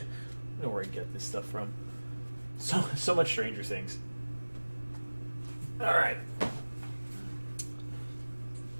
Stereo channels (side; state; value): both; inverted; correlation -1.00